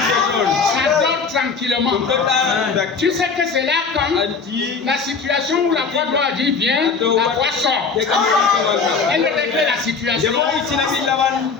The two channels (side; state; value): right; quieter; 5.0 dB